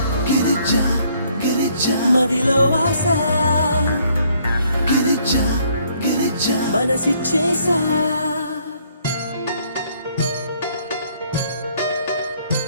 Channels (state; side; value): inverted; both; correlation -0.65